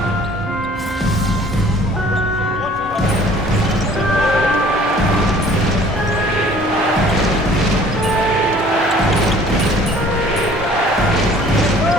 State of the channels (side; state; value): both; normal; correlation 0.53